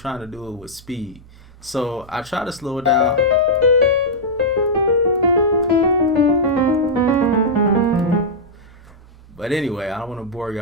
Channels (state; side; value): normal; both; correlation -0.08